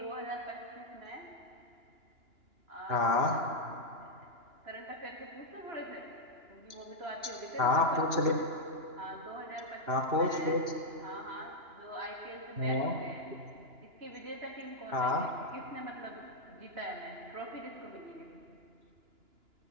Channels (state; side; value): late; left; 2.9 ms